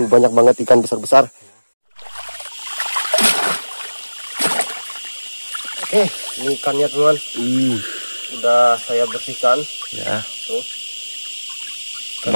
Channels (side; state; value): both; inverted; correlation -1.00